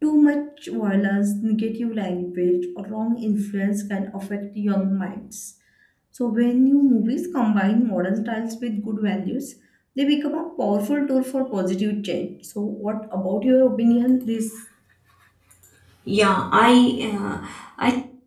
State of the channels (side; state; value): both; identical; correlation 1.00